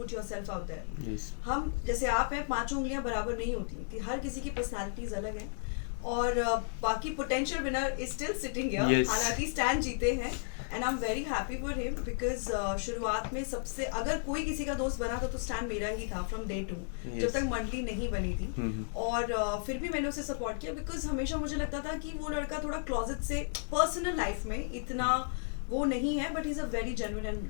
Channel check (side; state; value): right; silent; digital silence